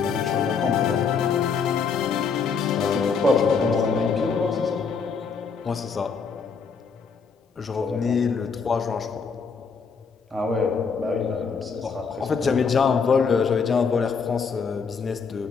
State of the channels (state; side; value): quieter; right; 5.5 dB